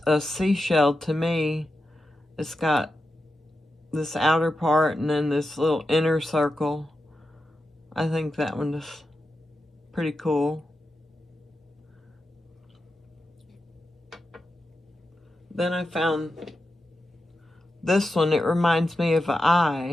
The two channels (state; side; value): normal; both; correlation 0.89